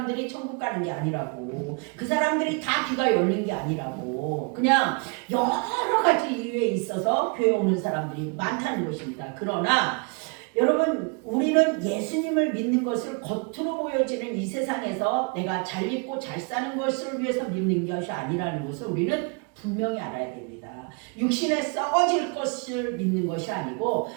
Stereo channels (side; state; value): left; quieter; 34.6 dB